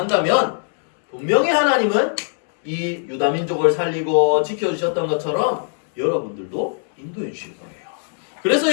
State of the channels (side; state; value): right; silent; 65 dB below the other